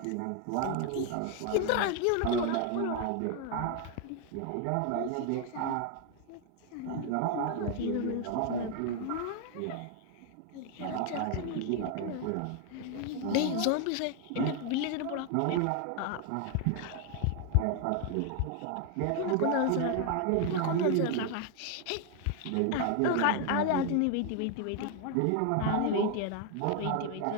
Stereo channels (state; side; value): different; both; correlation 0.01